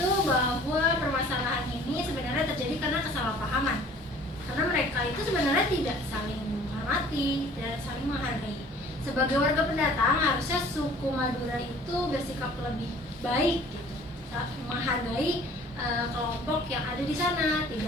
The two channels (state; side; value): normal; both; correlation 0.51